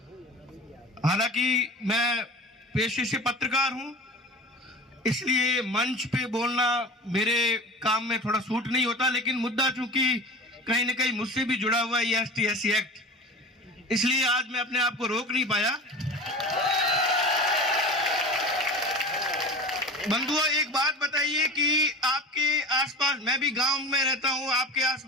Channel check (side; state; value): both; normal; correlation 0.34